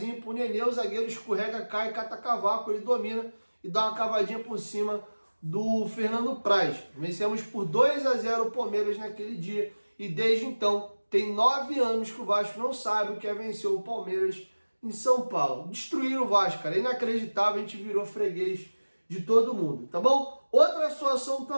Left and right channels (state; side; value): inverted; both; correlation -1.00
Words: pro Nenê, o zagueiro escorrega, cai, cata cavaco, ele domina e dá uma cavadinha por cima do Fernando Praz. Vencemos por 2-0 o Palmeiras naquele dia e desde então tem 9 anos que o Vasco não sabe o que é vencer o Palmeiras em São Paulo. Destruíram o Vasco, cara. Inacreditável, a gente virou freguês de todo mundo, tá bom? Outra situação